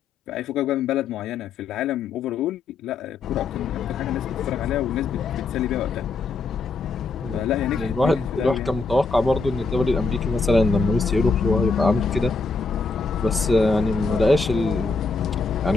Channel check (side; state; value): right; quieter; 4.0 dB